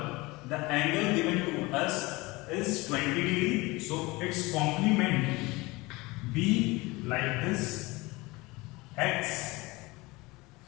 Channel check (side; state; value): right; quieter; 22.8 dB